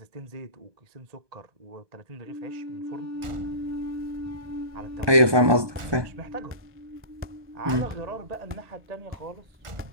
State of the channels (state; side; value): late; left; 1.2 ms